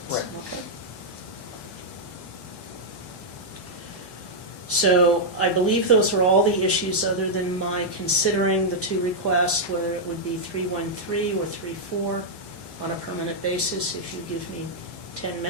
Right. Okay? So I believe those are all the issues other than my considering the two requests, whether it would be 313 or 34 on a permanent basis. If you give me 10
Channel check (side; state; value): right; late; 1.2 ms